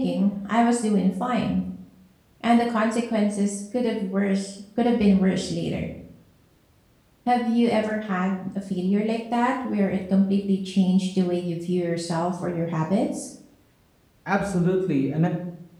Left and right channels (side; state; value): both; identical; correlation 1.00